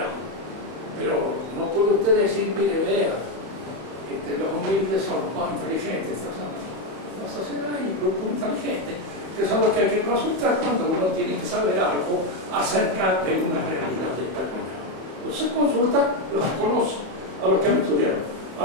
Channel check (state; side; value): late; left; 30 ms